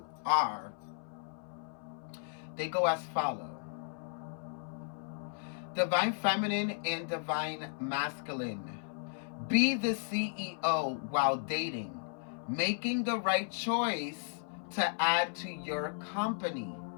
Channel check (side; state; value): right; silent; 55 dB below the other